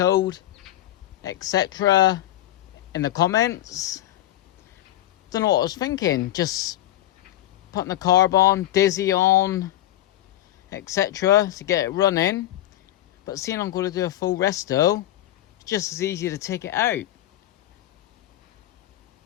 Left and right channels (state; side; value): quieter; right; 14.0 dB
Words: etc. in the comments. Don't know what I was thinking. Just putting the carb on, dizzy on, etc. to get it running. But seeing I'm going to do a full resto, it's just as easy to take it out.